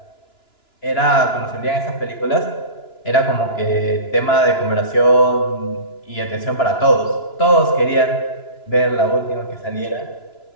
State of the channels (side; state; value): right; late; 2.9 ms